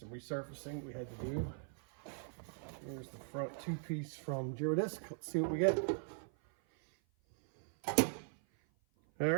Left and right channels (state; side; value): silent; left; 51 dB below the other